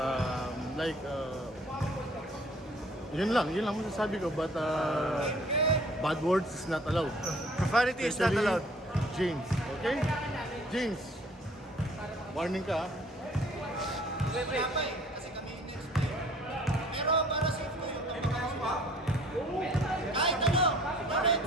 yun lang masasabi ko, but bad words is not allowed. Profanity is not Especially allowed. James, okay? James, warning ka, ha? Kasi kami next day. Pero para safe ko yung kahit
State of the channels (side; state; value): both; normal; correlation 0.55